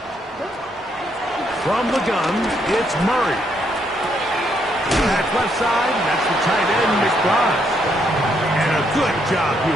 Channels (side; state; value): both; normal; correlation 0.74